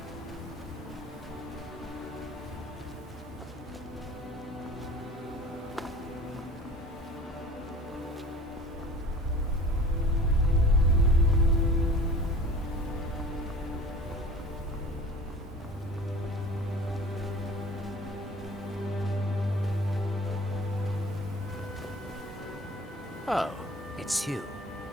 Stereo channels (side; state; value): both; normal; correlation 0.44